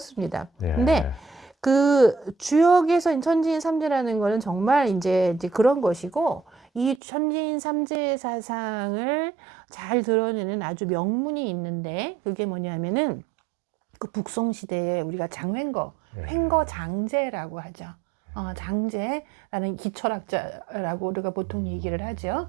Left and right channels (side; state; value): left; drops out; at 7.0 s